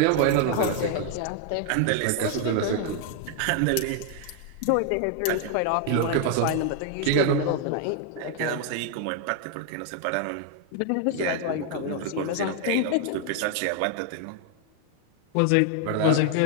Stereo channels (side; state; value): both; different; correlation 0.00